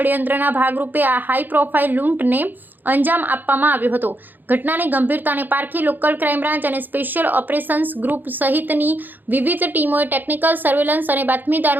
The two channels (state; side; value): late; left; 0.088 ms